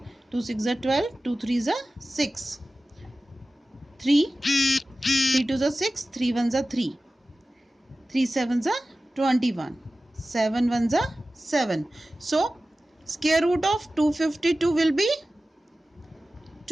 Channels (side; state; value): both; normal; correlation 0.96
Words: 2 6 are 12, 2 3s are 6. 3, 3 twos are 6, 3 ones are 3, 3 sevens are 21, 7 ones are 7. So, square root of 252 will be